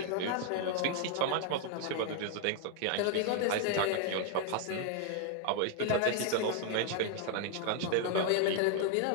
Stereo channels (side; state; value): both; different; correlation 0.00